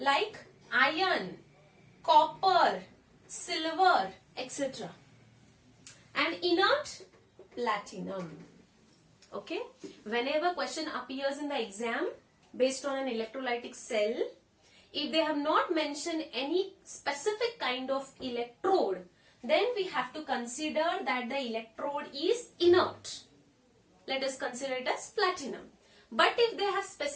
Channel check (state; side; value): identical; both; correlation 1.00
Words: iron, copper, silver, etc. And inert, platinum. Okay, whenever question appears in the exam based on an electrolytic cell, if they have not mentioned any specific kind of electrode, then we have to consider that the electrode is inert. Let us consider it as platinum. But if they have